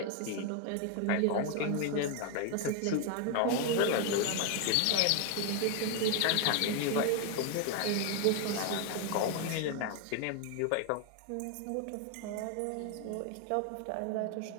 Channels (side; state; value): both; different; correlation 0.01